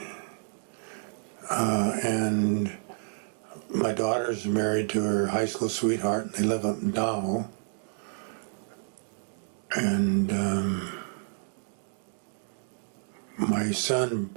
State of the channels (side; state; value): left; silent; digital silence